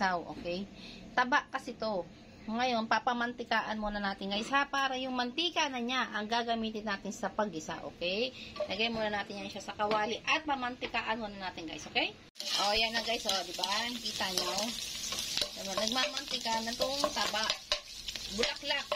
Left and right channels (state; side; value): identical; both; correlation 1.00